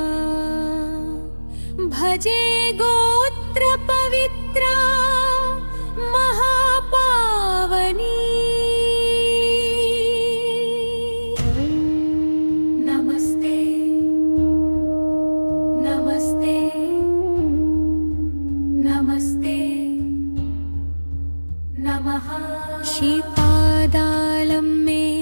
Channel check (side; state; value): both; inverted; correlation -1.00